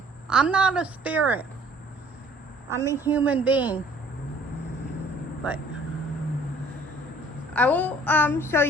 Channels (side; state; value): both; normal; correlation 0.55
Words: I'm not a spirit. I'm a human being. But I will show